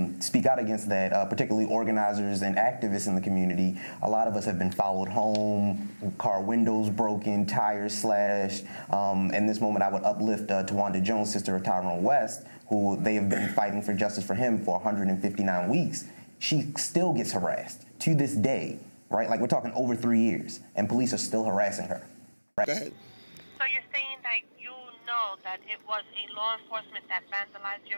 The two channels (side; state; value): both; inverted; correlation -1.00